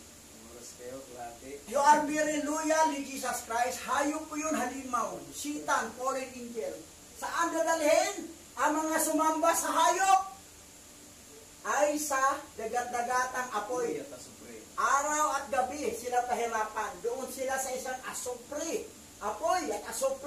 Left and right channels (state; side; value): identical; both; correlation 1.00